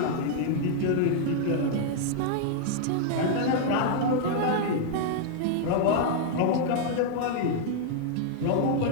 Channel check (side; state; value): both; different; correlation -0.01